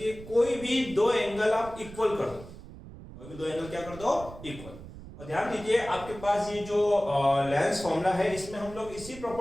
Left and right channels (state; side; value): noise; right; rumble, 15 dB below the sound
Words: कोई भी दो एंगल आप इक्वल कर दो, कोई भी दो एंगल क्या कर दो, इक्वल। और ध्यान दीजिए आपके पास ये जो लेंस फॉर्मूला है इसमें हम लोग इसी